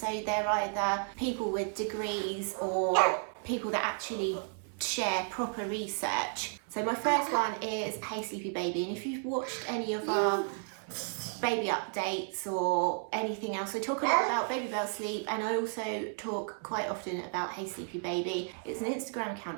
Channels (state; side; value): silent; left; 56 dB below the other